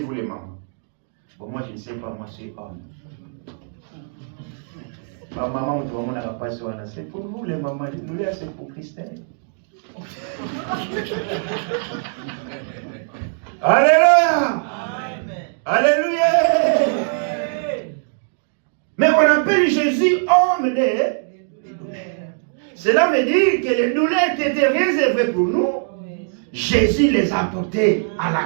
les mamans. Bon, moi, je ne sais pas, moi, je suis homme. Ma maman, c'est pour vous, les mamans. Les douleurs, c'est pour Christelle. Alléluia. Alléluia. Mais on appelle Jésus homme des douleurs. Cela veut dire que les douleurs qui étaient réservées pour nous, Jésus les a portées à la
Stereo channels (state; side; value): silent; left; digital silence